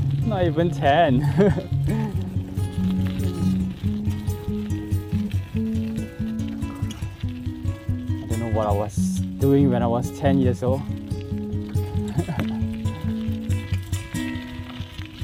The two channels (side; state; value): both; identical; correlation 1.00